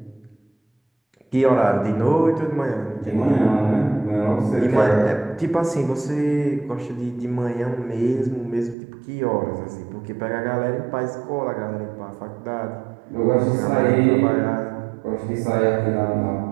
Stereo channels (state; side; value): drops out; left; at 8.8 s